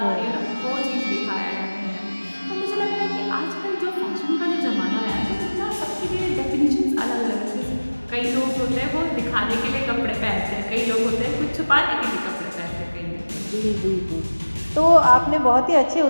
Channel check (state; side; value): inverted; both; correlation -1.00